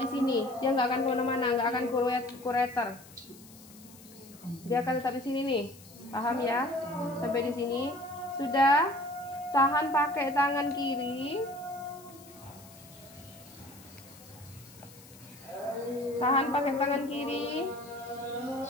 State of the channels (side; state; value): left; noise; hiss, 21 dB below the sound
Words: di sini. Dia nggak akan kemana-mana, nggak akan kureter. Dia akan tetap di sini nih, paham ya? Sampai di sini. Sudah, tahan pakai tangan kiri. Tahan pakai tangan kiri.